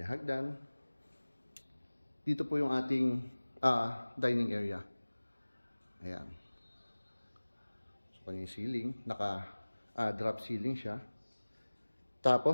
Dito po yung ating dining area. Ayan. So kanyang ceiling, naka drop ceiling siya.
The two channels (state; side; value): inverted; both; correlation -1.00